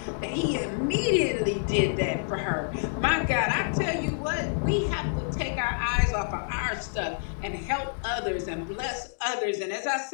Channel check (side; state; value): right; silent; digital silence